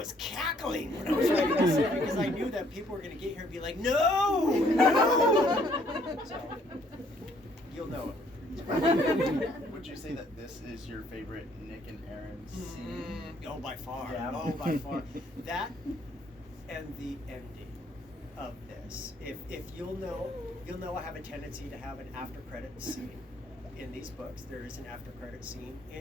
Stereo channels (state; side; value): normal; both; correlation 0.65